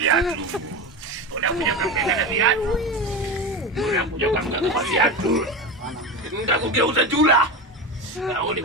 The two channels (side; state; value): both; normal; correlation 0.23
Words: Udah punya kamera viatu. Udah punya kamera viatu. Nggak kugeuza jula. Kau ni